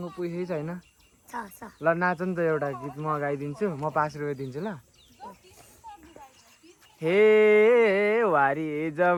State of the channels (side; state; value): both; identical; correlation 1.00